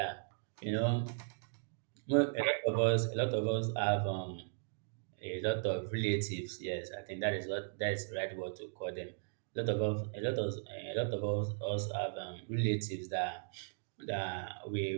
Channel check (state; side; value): silent; left; digital silence